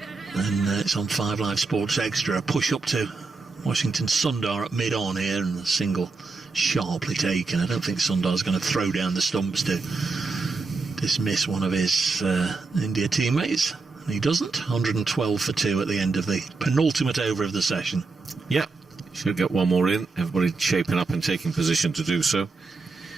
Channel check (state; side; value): quieter; left; 4.1 dB